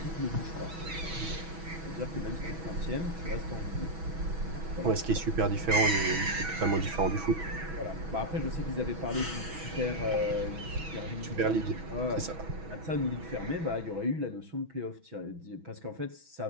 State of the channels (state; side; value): late; left; 6.1 ms